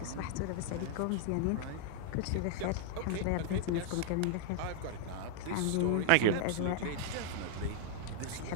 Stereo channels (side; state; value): both; different; correlation 0.00